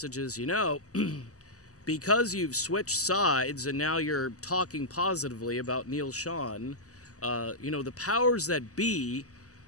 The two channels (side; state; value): right; late; 0.66 ms